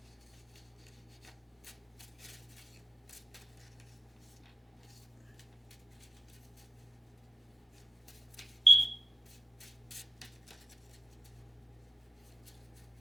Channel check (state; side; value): normal; both; correlation 0.95